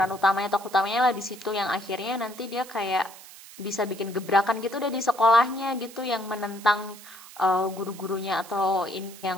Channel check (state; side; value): noise; right; hiss, 18 dB below the sound